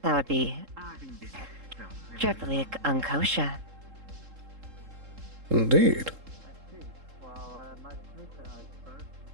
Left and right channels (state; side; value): late; left; 3.7 ms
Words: That would be triply unkosher. Indeed.